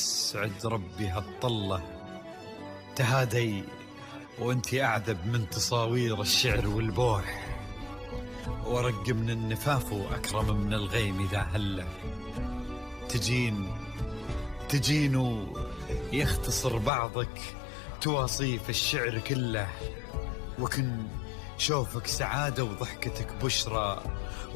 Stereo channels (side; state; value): right; drops out; at 16.9 s